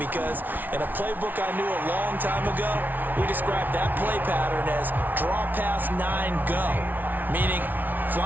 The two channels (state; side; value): late; left; 0.085 ms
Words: in a playbook I knew a long time ago, we described that play pattern as draw pass 9 go, meaning